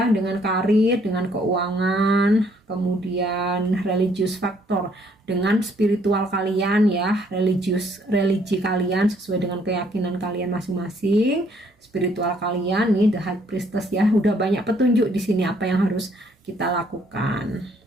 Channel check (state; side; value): normal; both; correlation 0.66